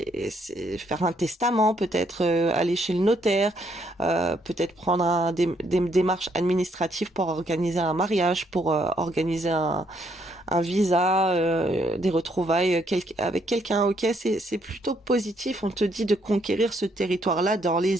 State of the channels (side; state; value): both; normal; correlation 0.71